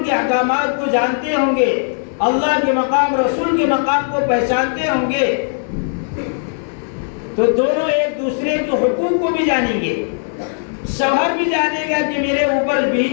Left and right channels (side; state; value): right; silent; 63 dB below the other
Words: کے احکامات کو جانتے ہوں گے، اللہ کے مقام، رسول کے مقام کو پہچانتے ہوں گے، تو دونوں ایک دوسرے کے حقوق کو بھی جانیں گے. شوہر بھی جانے گا کہ میرے اوپر